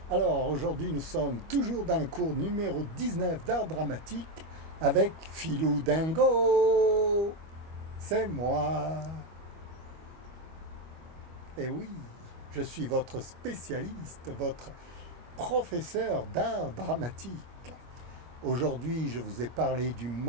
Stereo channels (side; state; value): left; late; 25 ms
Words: Alors aujourd'hui nous sommes toujours dans le cours numéro 19 d'art dramatique avec Philou Dingo. C'est moi. Et oui, je suis votre spécialiste, votre professeur d'art dramatique. Aujourd'hui je vous ai parlé du